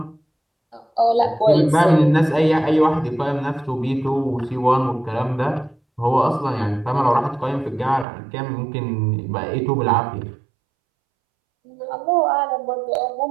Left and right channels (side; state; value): left; drops out; at 8.1 s